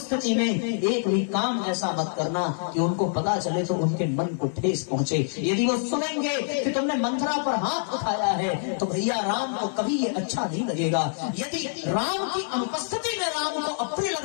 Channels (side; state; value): right; silent; 61 dB below the other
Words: में एक भी काम ऐसा मत करना कि उनको पता चले तो उनके मन को ठेस पहुंचे। यदि वो सुनेंगे कि तुमने मंथरा पर हाथ उठाया है तो भैया राम को कभी ये अच्छा नहीं लगेगा। यदि राम की अनुपस्थिति में राम को अप्रिय